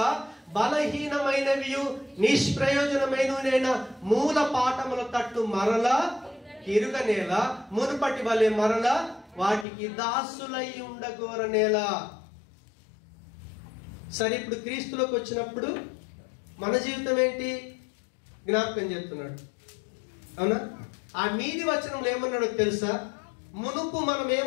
బలహీనమైనవి నిష్ప్రయోజనమైన మూల పాఠముల తట్టు మరలా తిరుగనేల, మునుపటి వలె మరలా వాటికి దాసులై ఉండగోరనేలా. సరే, ఇప్పుడు క్రీస్తులోకి వచ్చినప్పుడు మన జీవితం ఏంటి? జ్ఞాపకం చేస్తున్నాడు. అవునా? ఆ మీది వచనంలో ఏమన్నాడో తెలుసా? మునుపు మనం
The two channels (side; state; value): right; drops out; at 9.7 s